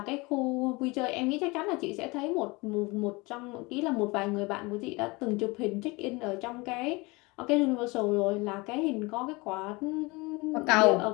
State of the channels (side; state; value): right; quieter; 24.9 dB